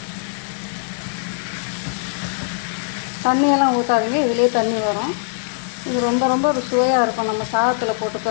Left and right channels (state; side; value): silent; right; 61 dB below the other